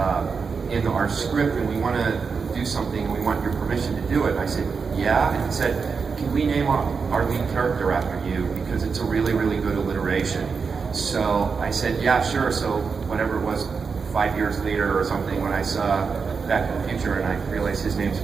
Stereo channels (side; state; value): left; quieter; 5.3 dB